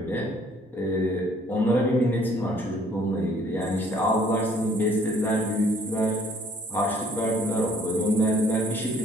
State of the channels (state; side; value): normal; both; correlation 0.60